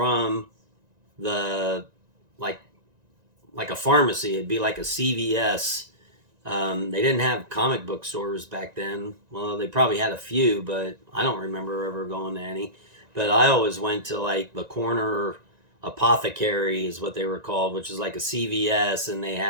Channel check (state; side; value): late; left; 1.9 ms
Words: the, like a pharmacy. It'd be like a CVS. They didn't have comic book stores back then. Well, they probably had a few, but I don't remember ever going to any. But I always went to like the corner apothecary is what they were called, which is like a CVS, and they